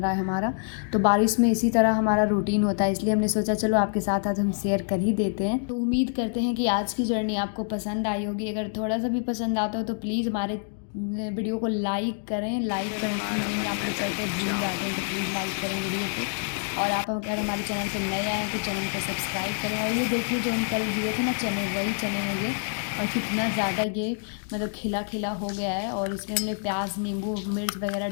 है हमारा। तो बारिश में इसी तरह हमारा रूटीन होता है, इसलिए हमने सोचा चलो आपके साथ आज हम शेयर कर ही देते हैं। तो उम्मीद करते हैं कि आज की जर्नी आपको पसंद आई होगी। अगर थोड़ा सा भी पसंद आता हो तो प्लीज़ हमारे वीडियो को लाइक करें। लाइक करना आप लोग करते भूल जाते हैं, तो प्लीज़ लाइक करें वीडियो को। और आप अगर हमारे चैनल पर नए आए हैं तो चैनल को सब्सक्राइब करें। और ये देखिए जो हम कल दिए थे ना चने, वही चने हैं ये। और कितना ज़्यादा ये मतलब खिला खिला हो गया है। और इसमें हमने प्याज नींबू मिर्च वगैरह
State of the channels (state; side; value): silent; right; digital silence